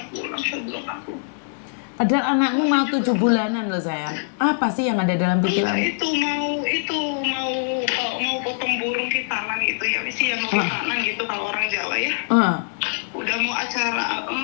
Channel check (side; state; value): right; silent; digital silence